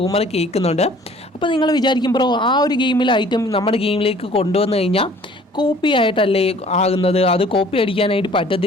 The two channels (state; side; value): normal; both; correlation 0.53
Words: കേൾക്കുന്നുണ്ട്. അപ്പോൾ നിങ്ങൾ വിചാരിക്കും ബ്രോ ആ ഒരു ഗെയിമിലെ ഐറ്റം നമ്മുടെ ഗെയിമിലേക്ക് കൊണ്ടുവന്നു കഴിഞ്ഞാൽ കോപ്പി ആയിട്ടല്ലേ ആകുന്നത്, അത് കോപ്പി അടിക്കാനായിട്ട്